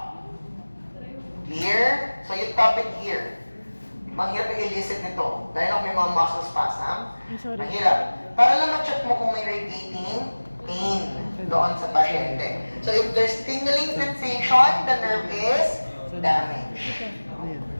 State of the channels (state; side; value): inverted; both; correlation -1.00